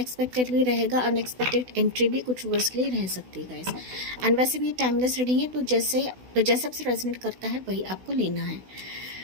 भी रहेगा, अनएक्सपेक्टेड एंट्री भी कुछ वर्ष के लिए रह सकती है गाइस। एंड वैसे भी टाइमलेस रीडिंग है, तो जैसे आपसे रेजोनेट करता है वही आपको लेना है।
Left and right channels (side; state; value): left; late; 16 ms